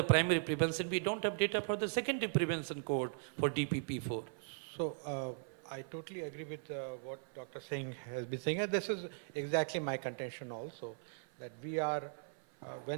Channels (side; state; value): left; silent; 52 dB below the other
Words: primary prevention. We don't have data for the secondary prevention cohort for DPP4. So I totally agree with what Dr. Singh has been saying. And this is exactly my contention also, that we are,